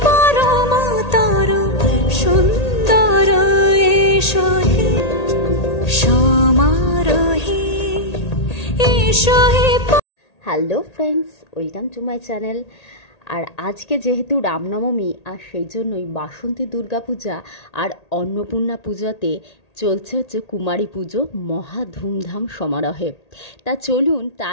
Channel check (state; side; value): late; right; 1.8 ms